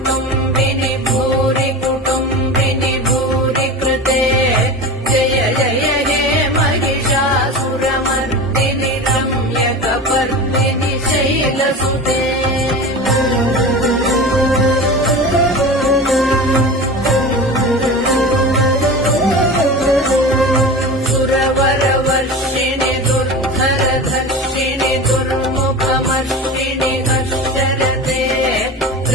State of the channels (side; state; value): both; normal; correlation 0.30